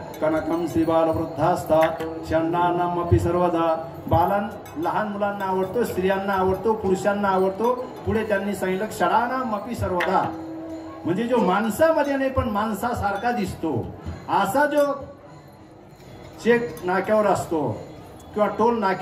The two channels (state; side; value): identical; both; correlation 1.00